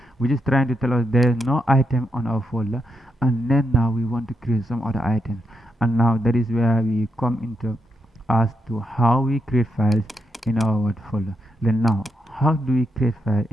which is trying to tell us there's no item on our folder. And then now we want to create some other items. And now that is where we come into as to how we create files in our what folder. Then now, how do we create file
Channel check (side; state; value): both; normal; correlation 0.83